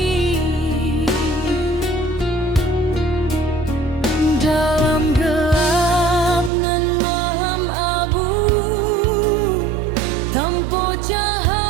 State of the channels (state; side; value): drops out; left; at 6.5 s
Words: Dalam gelap nan malam abu, tanpa